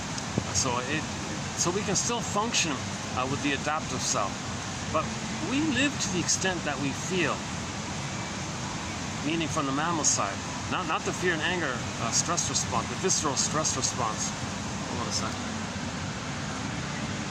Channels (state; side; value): identical; both; correlation 1.00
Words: So we can still function with the adaptive self. But we live to the extent that we feel, meaning from the mammal side. Not the fear and anger stress response, the visceral stress response. Hold on a second.